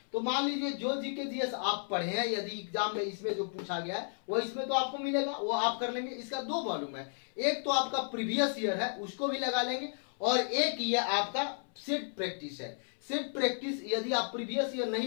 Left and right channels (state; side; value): silent; right; 56 dB below the other